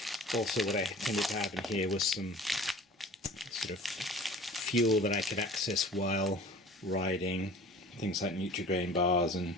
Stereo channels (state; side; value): normal; both; correlation 0.44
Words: also what I tended to have in here was some sort of fuel that I could access while riding, things like Nutri-Grain bars and